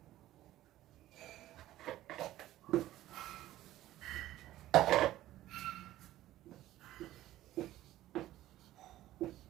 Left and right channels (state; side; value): quieter; left; 14.7 dB